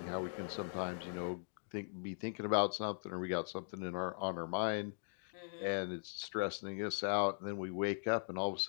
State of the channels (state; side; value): silent; right; digital silence